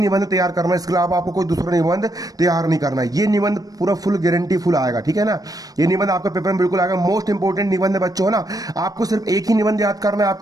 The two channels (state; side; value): late; left; 0.18 ms